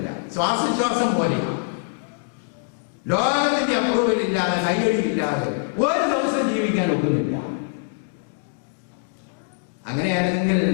ശ്വാസശ്വാസം പോലെയാണ്. ലോകത്തിന്റെ അപ്രൂവൽ ഇല്ലാതെ, കയ്യടി ഇല്ലാതെ ഒരു ദിവസം ജീവിക്കാൻ ഒക്കുന്നില്ല. അങ്ങനെയാണെങ്കിൽ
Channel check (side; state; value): right; quieter; 39.5 dB